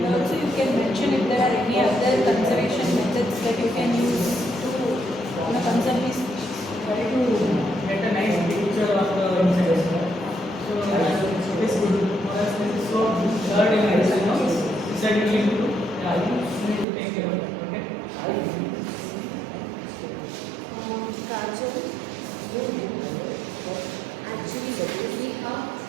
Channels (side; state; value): left; drops out; at 16.9 s